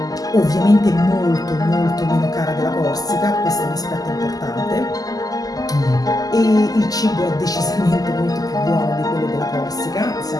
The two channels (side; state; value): right; late; 0.18 ms